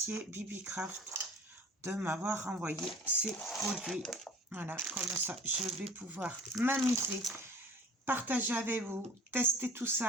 BibiCraft de m'avoir envoyé ces produits. Voilà, comme ça, je vais pouvoir m'amuser, partager avec vous, tester tout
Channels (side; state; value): both; normal; correlation 0.47